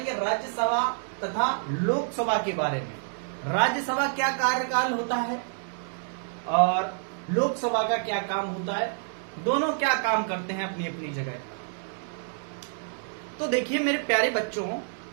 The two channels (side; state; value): left; silent; 59 dB below the other